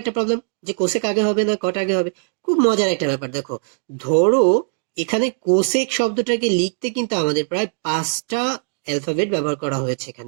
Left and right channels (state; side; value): silent; left; digital silence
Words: একটা প্রবলেম যে কোসেক আগে হবে না কট আগে হবে। খুব মজার একটা ব্যাপার, দেখো ধরো এখানে কোসেক শব্দটাকে লিখতে কিন্তু আমাদের প্রায় 5টা অ্যালফাবেট ব্যবহার করা হয়েছে